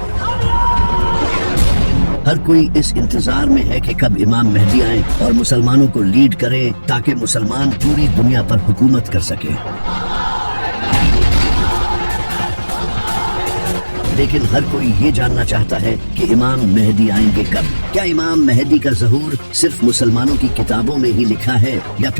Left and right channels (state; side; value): inverted; both; correlation -1.00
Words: ہر کوئی اس انتظار میں ہے کہ کب امام مہدی آئیں اور مسلمانوں کو لیڈ کریں تاکہ مسلمان پوری دنیا پر حکومت کر سکیں۔ لیکن ہر کوئی یہ جاننا چاہتا ہے کہ امام مہدی آئیں گے کب؟ کیا امام مہدی کا ظہور صرف مسلمانوں کی کتابوں میں ہی لکھا ہے یا